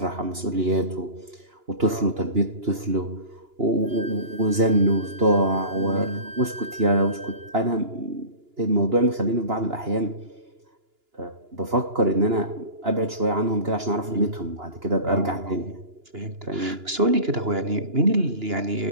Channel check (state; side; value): late; left; 2.9 ms